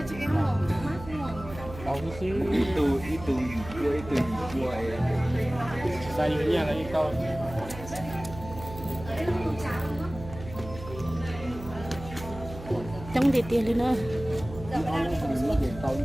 Ra như thế là cái câu chống đi tiền lên nữa Rồi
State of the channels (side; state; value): right; noise; hum, 13 dB below the sound